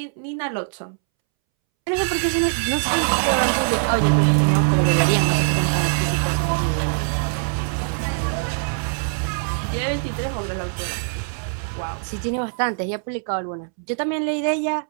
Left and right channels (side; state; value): left; silent; 64 dB below the other